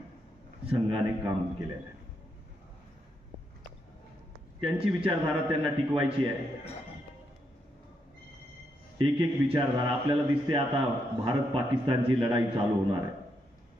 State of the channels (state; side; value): normal; both; correlation 0.80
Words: संघाने काम केलेलं आहे. त्यांची विचारधारा त्यांना टिकवायची आहे. एक एक विचारधारा आपल्याला दिसते. आता भारत पाकिस्तानची लढाई चालू होणार